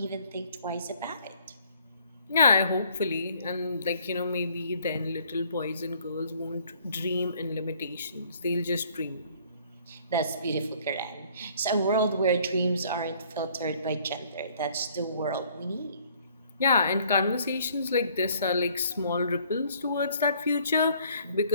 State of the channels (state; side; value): inverted; both; correlation -0.60